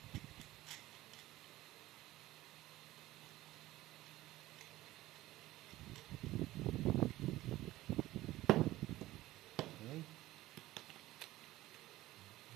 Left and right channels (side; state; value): left; quieter; 16.7 dB